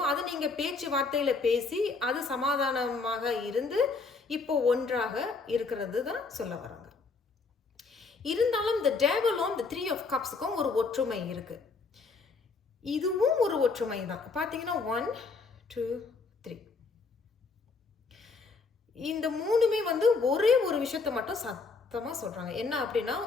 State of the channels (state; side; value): quieter; right; 4.3 dB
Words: அது நீங்க பேச்சுவார்த்தையில பேசி, அது சமாதானமாக இருந்து, இப்போ ஒன்றாக இருக்கிறது தான் சொல்ல வராங்க. இருந்தாலும் இந்த டேவலும் இந்த 3 ஆஃப் கப்ஸுக்கும் ஒரு ஒற்றுமை இருக்கு. இதுவும் ஒரு ஒற்றுமை தான். பார்த்தீங்கன்னா 1, 2, 3. இந்த 3மே வந்து ஒரே ஒரு விஷயத்த மட்டும் சத்தமா சொல்றாங்க. என்ன அப்படின்னா,